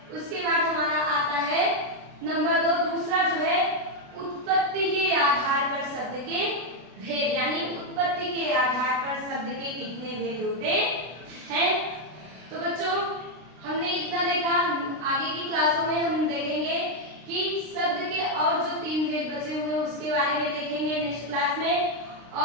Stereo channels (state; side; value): late; left; 32 ms